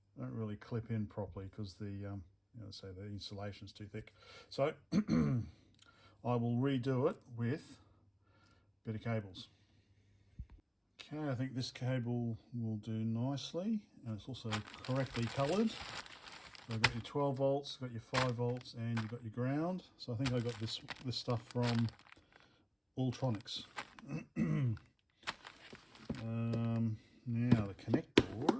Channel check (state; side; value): identical; both; correlation 1.00